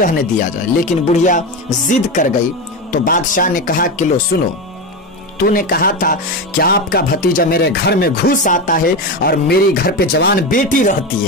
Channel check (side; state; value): both; normal; correlation 0.18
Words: دیا جائے، لیکن بڑھیا ضد کر گئی۔ تو بادشاہ نے کہا کہ لو سنو، تو نے کہا تھا کہ آپ کا بھتیجا میرے گھر میں گھس آتا ہے اور میری گھر پہ جوان بیٹی رہتی